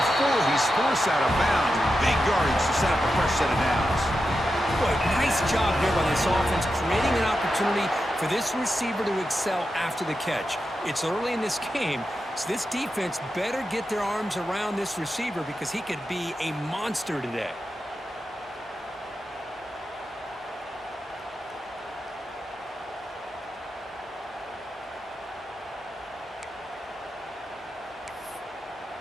he's forced out of bounds. Big yardage to set up a fresh set of downs. Boy, nice job here by this offense, creating an opportunity for this receiver to excel after the catch. It's early in this game, so this defense better get their arms around this receiver because he could be a monster today.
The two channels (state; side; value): normal; both; correlation 0.89